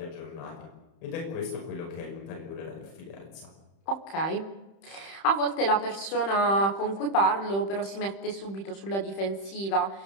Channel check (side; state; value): right; late; 31 ms